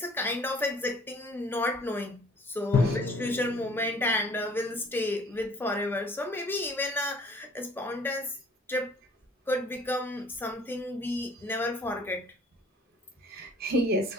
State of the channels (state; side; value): normal; both; correlation 0.54